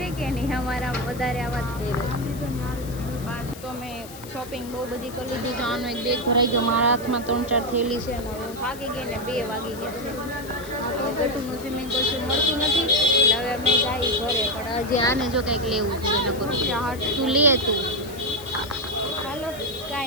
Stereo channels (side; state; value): left; noise; hiss, 17 dB below the sound